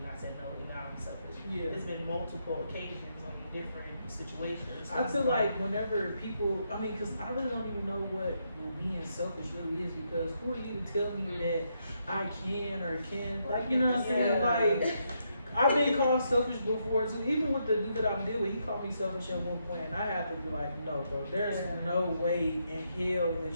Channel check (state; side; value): inverted; both; correlation -0.79